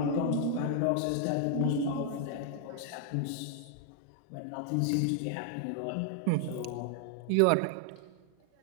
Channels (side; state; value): both; different; correlation 0.00